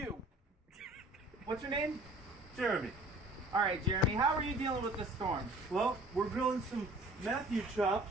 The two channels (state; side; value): normal; both; correlation 0.50